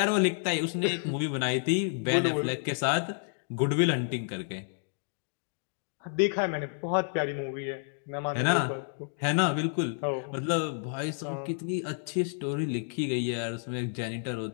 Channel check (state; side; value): silent; right; digital silence